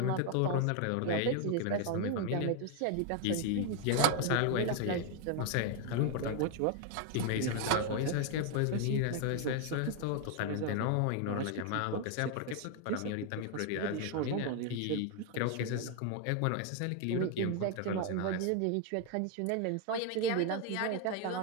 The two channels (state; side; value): different; both; correlation 0.01